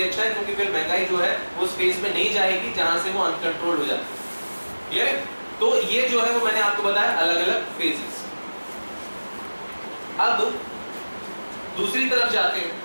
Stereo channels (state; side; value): inverted; both; correlation -1.00